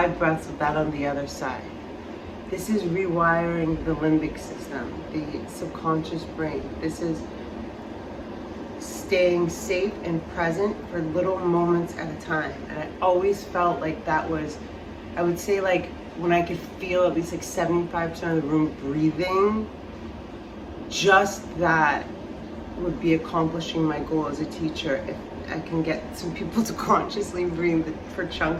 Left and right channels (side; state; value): both; identical; correlation 1.00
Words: breaths of that on the other side. This is rewiring the limbic system, the subconscious brain. This is staying safe and present for little moments at a time. And I always felt like that was, I would say, like when I could feel at least like 75% of the room breathing, just that would be accomplishing my goal as a teacher if I can get some people to consciously breathe for